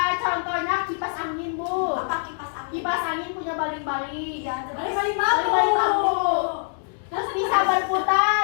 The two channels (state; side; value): silent; right; digital silence